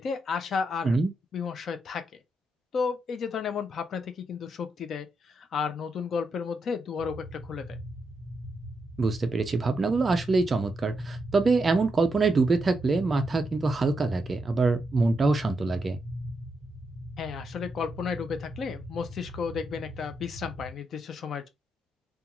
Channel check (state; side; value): normal; both; correlation 0.83